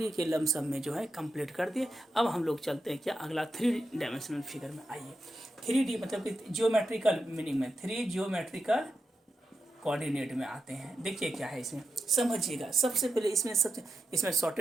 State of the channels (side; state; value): both; normal; correlation 0.88